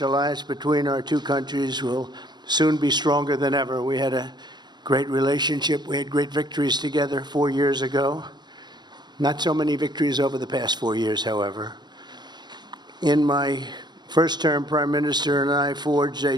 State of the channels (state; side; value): late; left; 0.21 ms